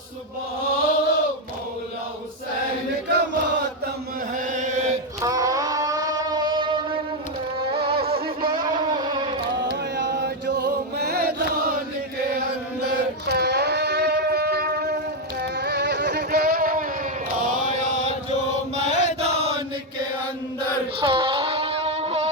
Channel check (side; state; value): both; normal; correlation 0.04